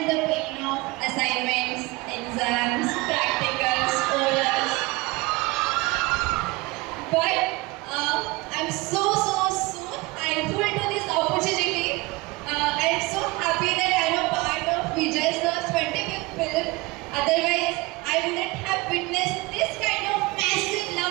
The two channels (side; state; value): left; quieter; 23.0 dB